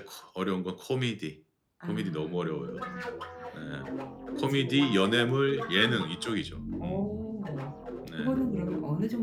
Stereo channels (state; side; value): identical; both; correlation 1.00